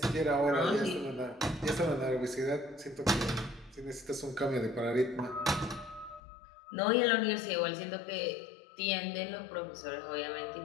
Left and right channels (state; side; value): drops out; right; at 6.2 s